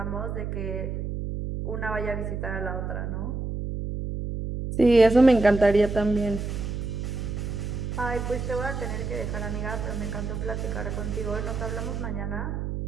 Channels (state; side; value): noise; right; hum, 4 dB below the sound